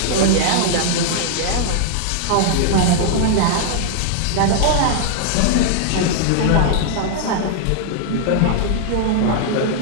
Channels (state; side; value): different; both; correlation -0.01